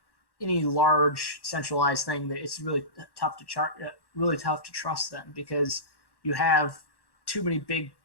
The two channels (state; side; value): late; right; 1.1 ms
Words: any large centralized thing that it's really tough to really tough to trust them because you have too many big